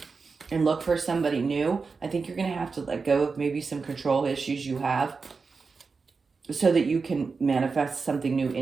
and look for somebody new, I think you're going to have to let go of maybe some control issues you have so that you can manifest something new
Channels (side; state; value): left; quieter; 4.7 dB